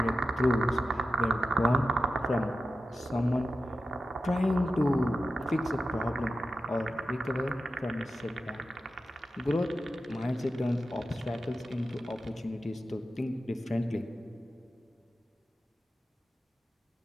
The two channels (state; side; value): normal; both; correlation 0.91